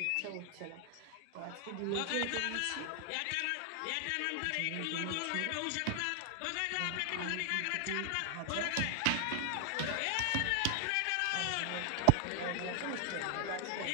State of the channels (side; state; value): both; different; correlation 0.00